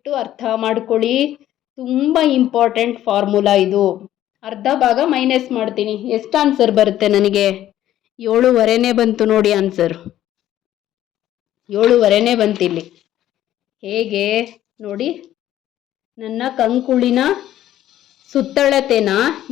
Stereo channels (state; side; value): quieter; right; 12.7 dB